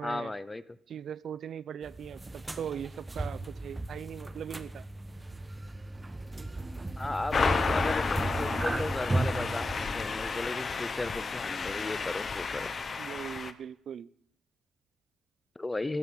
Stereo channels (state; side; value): normal; both; correlation 0.90